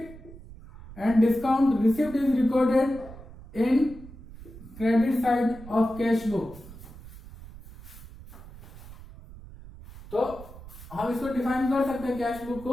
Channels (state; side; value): noise; right; rumble, 17 dB below the sound